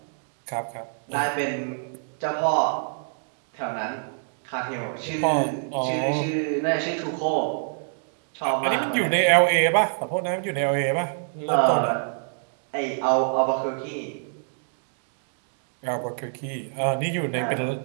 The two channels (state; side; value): silent; left; digital silence